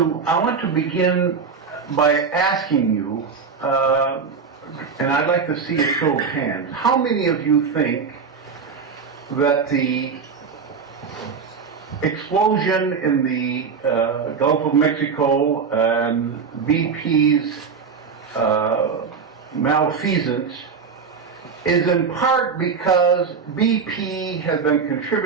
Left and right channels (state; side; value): quieter; left; 5.7 dB